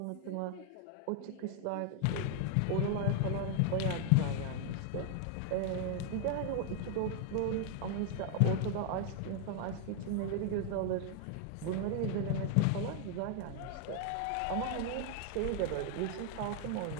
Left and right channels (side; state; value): both; different; correlation 0.00